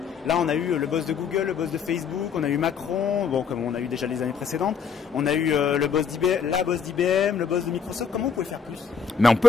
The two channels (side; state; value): right; quieter; 6.7 dB